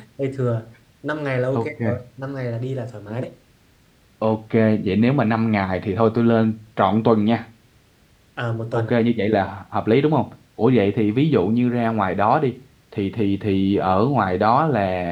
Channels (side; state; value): both; identical; correlation 1.00